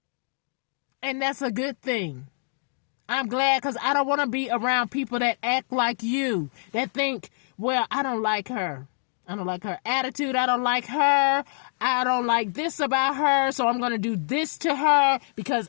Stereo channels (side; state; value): right; silent; 61 dB below the other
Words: And that's a good thing. I'm glad because I don't want to be around people that act like you, that think, well, I don't like her. I don't like her attitude. I don't like her. I don't like this about her. So I'm going to do this to her because